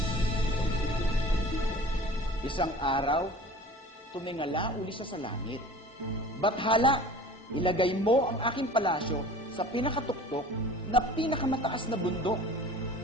Isang araw, tumingala uli siya sa langit. Bathala, ilagay mo ang aking palasyo sa pinakatuktok na pinakamataas na bundok.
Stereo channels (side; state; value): both; normal; correlation 0.42